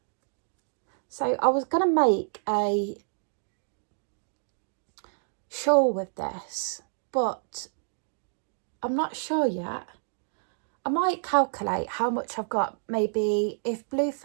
So I was going to make a shawl with this, but I'm not sure yet. I might calculate how much I've got. Maybe if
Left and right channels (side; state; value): left; silent; digital silence